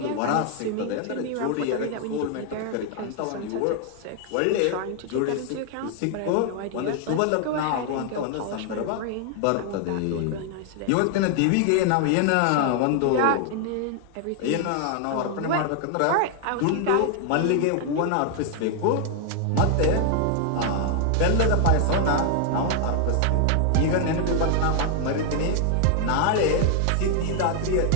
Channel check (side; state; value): both; different; correlation 0.00